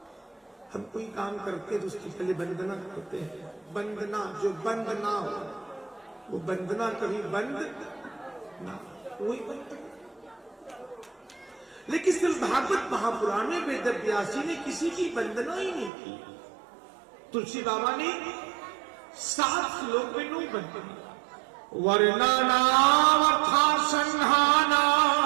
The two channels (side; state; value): left; drops out; at 15.9 s